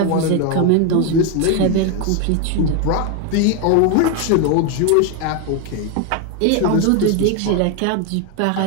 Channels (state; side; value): different; both; correlation 0.01